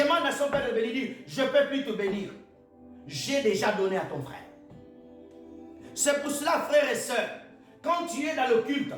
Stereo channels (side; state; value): both; identical; correlation 1.00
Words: à son père de bénir, dit, je ne peux plus te bénir. J'ai déjà donné à ton frère. C'est pour cela, frères et sœurs, quand tu es dans le culte,